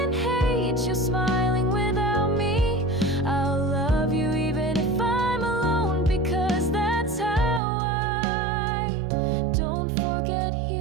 hate you smiling without me. I'll love you even if I'm alone, because that's how I don't forget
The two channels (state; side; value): drops out; left; at 7.6 s